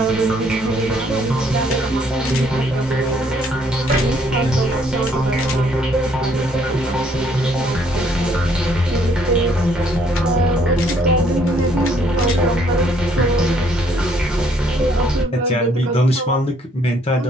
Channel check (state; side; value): normal; both; correlation 0.66